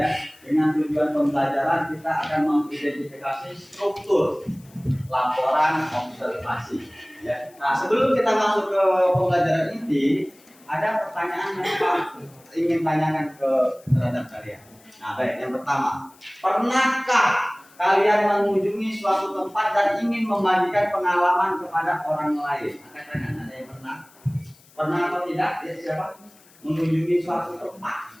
dengan tujuan pembelajaran kita akan mengidentifikasi struktur laporan observasi. Ya. Nah, sebelum kita masuk ke pembelajaran inti, ada pertanyaan yang Pak ingin tanyakan terhadap kalian. Nah, baik, yang pertama, pernahkah kalian mengunjungi suatu tempat dan ingin membagikan pengalaman kepada orang lain? Angkat tangan, ada yang pernah? Pernah atau tidak? Ya, siapa? Mengunjungi suatu tempat.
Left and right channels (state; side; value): noise; left; hiss, 27 dB below the sound